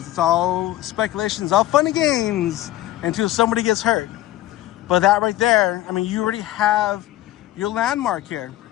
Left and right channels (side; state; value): right; quieter; 14.9 dB